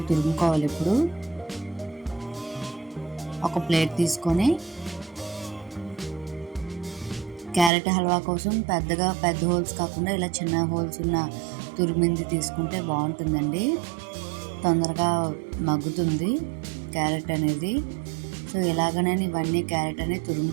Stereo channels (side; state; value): left; drops out; at 7.7 s